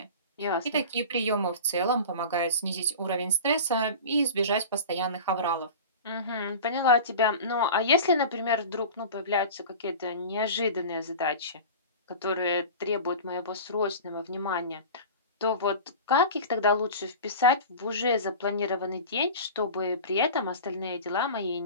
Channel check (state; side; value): inverted; both; correlation -0.34